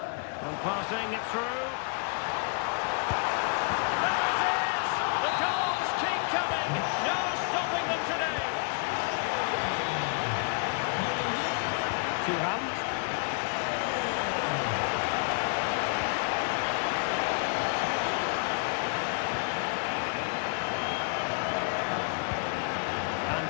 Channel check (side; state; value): right; quieter; 37.6 dB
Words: And passing it through. There it is! The goals keep coming. No stopping them today. Thuram. And